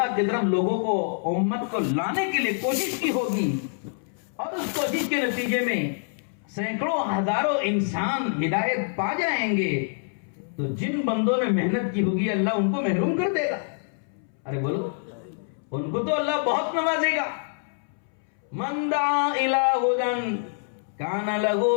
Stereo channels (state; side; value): silent; right; 61 dB below the other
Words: کی طرف لوگوں کو، امت کو لانے کے لیے کوشش کی ہوگی، اور اس کوشش کے نتیجے میں سینکڑوں ہزاروں انسان ہدایت پا جائیں گے، تو جن بندوں نے محنت کی ہوگی اللہ ان کو محروم کر دے گا۔ ارے بولو، ان کو تو اللہ بہت نوازے گا۔ من دعا الی ہدی کان لہ